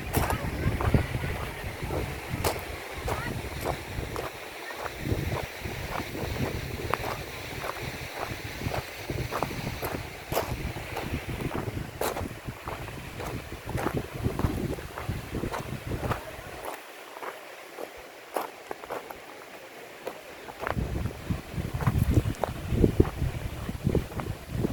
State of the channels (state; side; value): identical; both; correlation 1.00